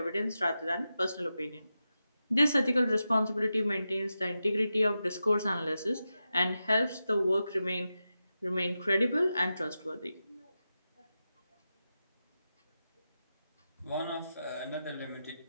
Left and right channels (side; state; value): both; inverted; correlation -0.90